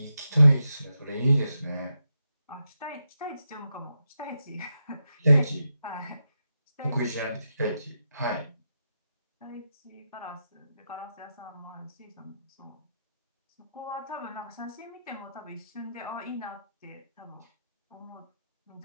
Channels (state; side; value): inverted; both; correlation -0.86